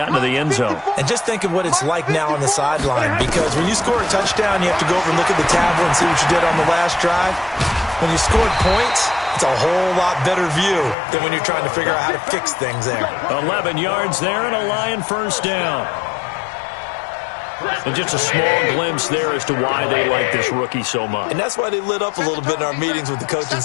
into the end zone. And just think of what it's like now on the sideline, because when you score a touchdown, you have to go over and look at the tablet and see what you did on the last drive. When you scored points, it's a whole lot better view than when you're trying to figure out how to fix things there. 11 yards there and a Lion first down. And just a small glimpse there as to why they like this rookie so much. And that's why they lit up a little bit in our meetings with the coaching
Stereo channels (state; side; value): drops out; right; at 11.0 s